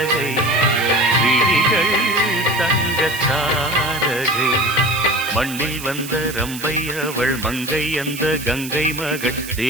விழிகள் தங்கத்தாரகை மண்ணில் வந்த ரம்பை அவள் மங்கை அந்த கங்கை மகள்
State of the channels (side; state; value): right; noise; hiss, 11 dB below the sound